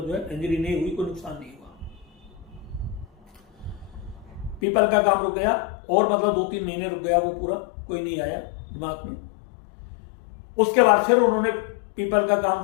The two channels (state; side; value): drops out; right; at 4.6 s